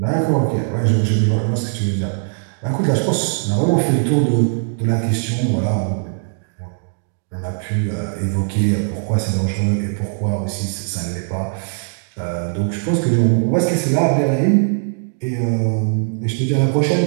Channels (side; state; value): left; silent; digital silence